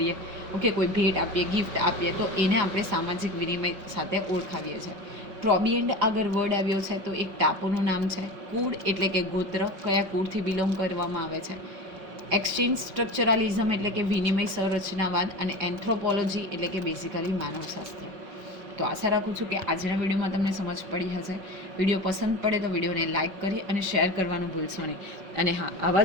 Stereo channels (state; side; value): late; left; 5.3 ms